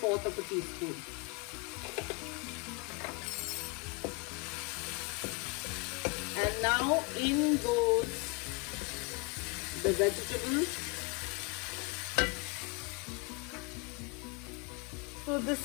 of a teaspoon. And now in goes the vegetables. So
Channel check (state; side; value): quieter; right; 30.5 dB